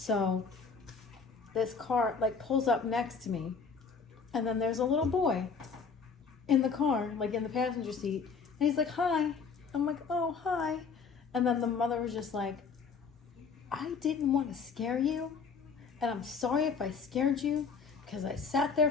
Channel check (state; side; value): quieter; right; 5.4 dB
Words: this car like pulls up next to me. And then there's a little boy in the car, like in the passenger seat. And he's like, hi. I'm like, oh, hi. And then the mother was just like, I didn't want to scare you. And I'm sorry if I scared you. Because I sat there